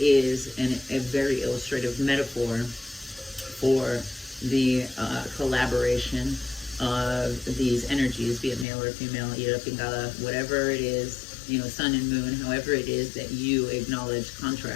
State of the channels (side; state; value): right; drops out; at 8.7 s